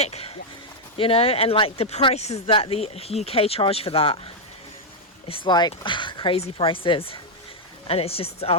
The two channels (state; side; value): normal; both; correlation -0.01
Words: you know, and like the prices that the UK charge for that, it's like crazy prices, and it's just